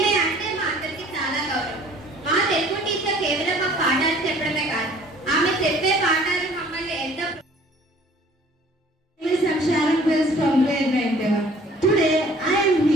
అంటే మా అందరికీ చాలా గౌరవం. మా తెలుగు టీచర్ కేవలం మా పాఠాలు చెప్పడమే కాదు, ఆమె చెప్పే పాఠాలు మమ్మల్ని ఎంతో Miss Sharon Wills from grade 9. Today I am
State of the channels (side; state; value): both; normal; correlation 0.53